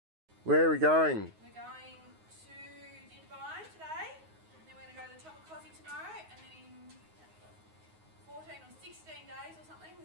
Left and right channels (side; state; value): left; late; 9.5 ms